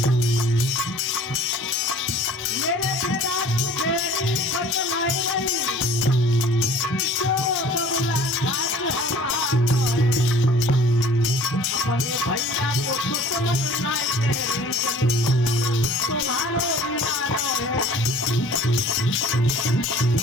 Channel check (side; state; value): both; normal; correlation 0.49